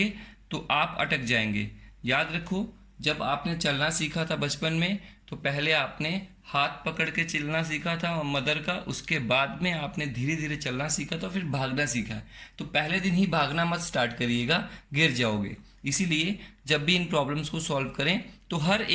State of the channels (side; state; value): both; identical; correlation 1.00